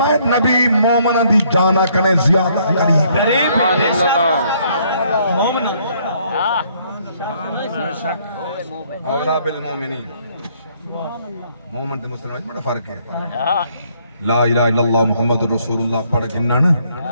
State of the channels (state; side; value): inverted; both; correlation -0.67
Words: نبی مومن دی جانا کرے زیادہ قریب مومن اولا بالمومنین مومن تے مسلمان بڑا فرق ہے لا الہ الا اللہ محمد رسول اللہ پڑھ گھننا نا